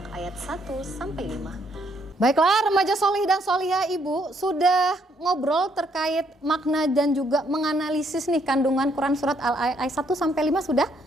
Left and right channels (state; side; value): normal; both; correlation 0.70